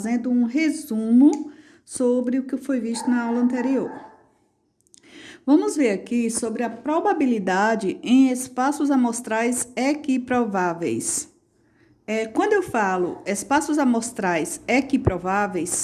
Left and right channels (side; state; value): both; identical; correlation 1.00